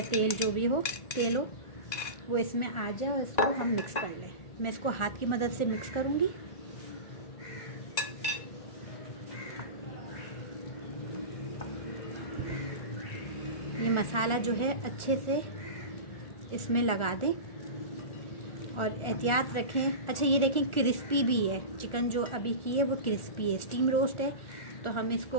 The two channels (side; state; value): right; late; 1.4 ms